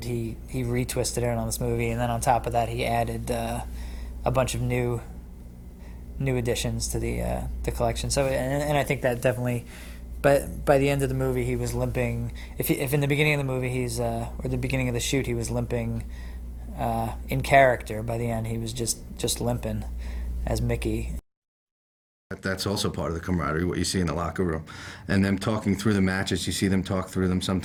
he retwisted it on this movie, and then on top of that, he added a bunch of new additions to the collection. So, and I think that definitely, but by the end of the movie, he was limping. If in the beginning of the movie or the beginning of the shoot, he was limping in character. By the end, he was just limping as Mickey. That's also part of the camaraderie, what you see in the locker room. And them talking through the matches, you see them talk through them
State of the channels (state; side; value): identical; both; correlation 1.00